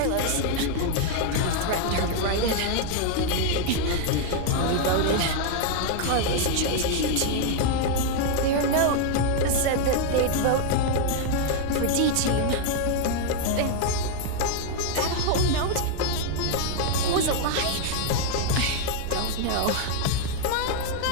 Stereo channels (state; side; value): different; both; correlation 0.00